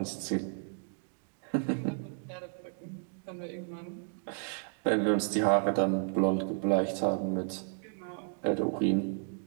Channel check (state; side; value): silent; left; 56 dB below the other